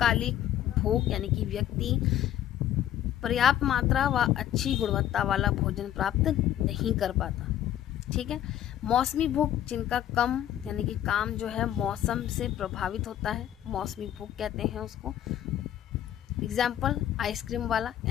भूख यानी कि व्यक्ति पर्याप्त मात्रा व अच्छी गुणवत्ता वाला भोजन प्राप्त नहीं कर पाता। ठीक है। मौसमी भूख, जिनका कम यानी कि काम जो है मौसम से प्रभावित होता है, मौसमी भूख कहते हैं उसको। एग्जाम्पल आइसक्रीम वाला,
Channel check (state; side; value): quieter; right; 11.6 dB